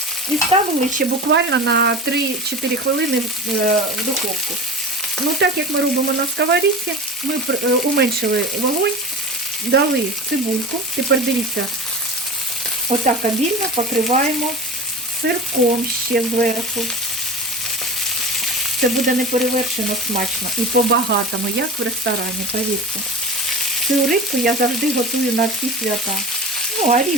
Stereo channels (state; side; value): normal; both; correlation 0.32